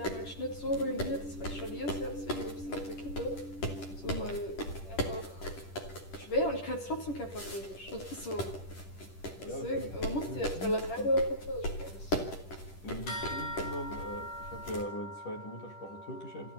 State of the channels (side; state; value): right; late; 10 ms